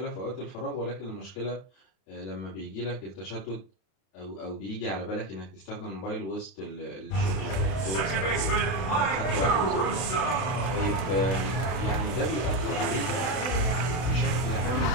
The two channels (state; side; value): late; right; 32 ms